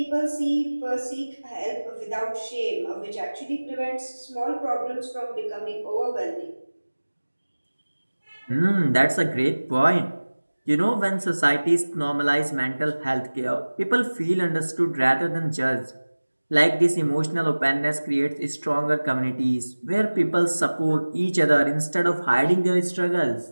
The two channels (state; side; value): inverted; both; correlation -1.00